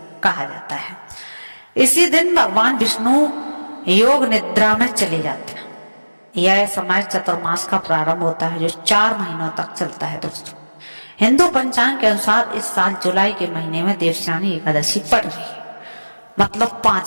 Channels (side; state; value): both; inverted; correlation -1.00